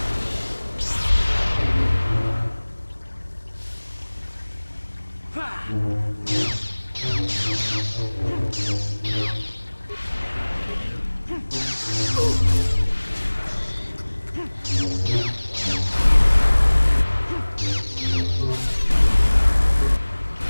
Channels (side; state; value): both; inverted; correlation -1.00